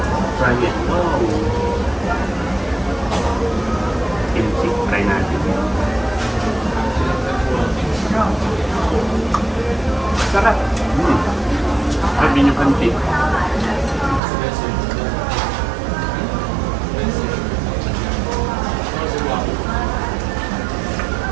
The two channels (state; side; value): drops out; left; at 14.2 s